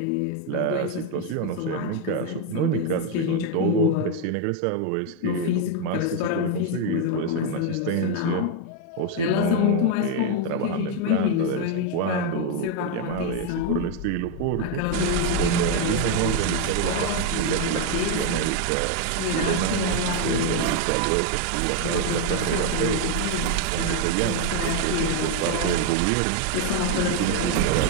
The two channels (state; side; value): different; both; correlation 0.01